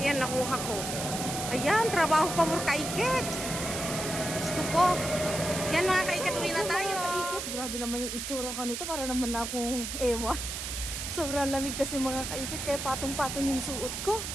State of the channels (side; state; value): right; noise; hiss, 5 dB below the sound